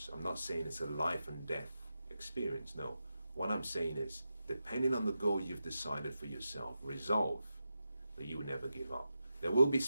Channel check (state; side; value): inverted; both; correlation -0.90